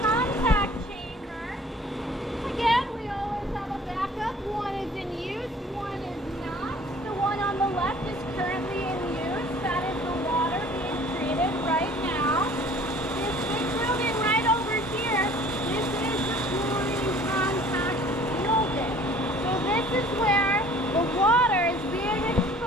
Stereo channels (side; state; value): both; normal; correlation 0.51